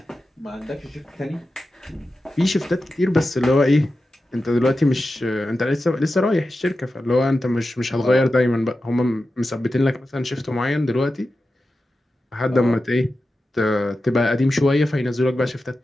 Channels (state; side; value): normal; both; correlation 0.92